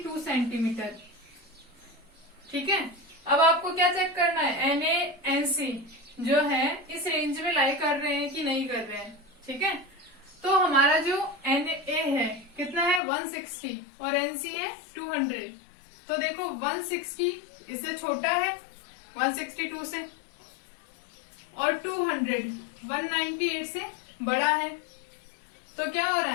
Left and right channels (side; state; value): right; drops out; at 13.0 s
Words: सेंटीमीटर. ठीक है, अब आपको क्या चेक करना है, NaNC जो है इस रेंज में लाई कर रहे हैं कि नहीं कर रहे हैं. ठीक है, तो हमारा जो Na है कितना है 160 और NC है 200. तो देखो 160 इससे छोटा है 162 से और 200 198 से बड़ा है. तो क्या हो रहा